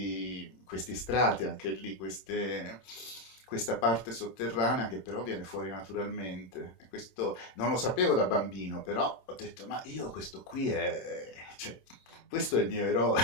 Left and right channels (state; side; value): late; right; 26 ms